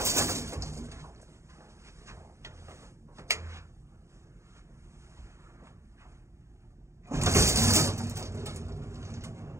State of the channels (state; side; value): late; left; 0.14 ms